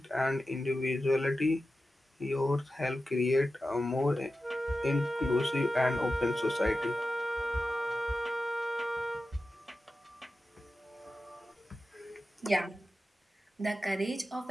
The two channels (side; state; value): both; normal; correlation 0.92